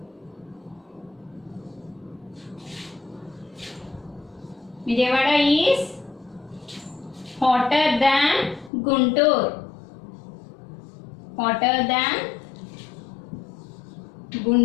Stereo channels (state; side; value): drops out; right; at 8.7 s